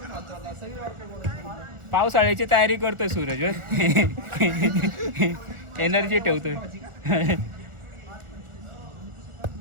पावसाळ्याची तयारी करतोय सूरज. एनर्जी ठेवतोय.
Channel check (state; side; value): late; left; 1.4 ms